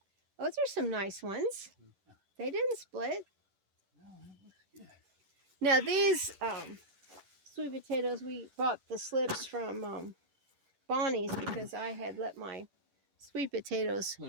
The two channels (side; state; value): left; late; 11 ms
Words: Those are some nice ones. They didn't split. No, that looks good. Now, these sweet potatoes, we bought the slips from Bonnie's because I had let my sweet potatoes